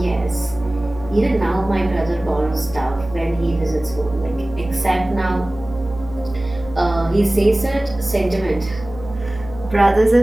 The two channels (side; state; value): right; noise; hum, 14 dB below the sound